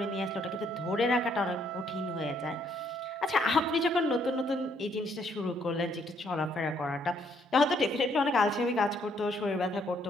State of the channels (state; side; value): normal; both; correlation 0.69